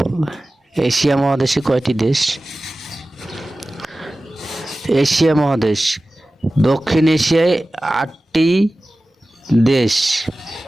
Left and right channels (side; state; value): both; normal; correlation 0.96